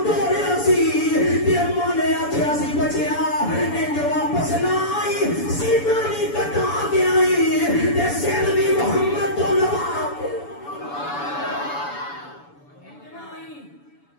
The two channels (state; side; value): late; right; 7.0 ms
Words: توڑیا سی تے اما نے آکھیا سی بچیا انج واپس نہ آئی سیدھا نہیں کٹا کے آئی تے سر بھی محمد تو لوا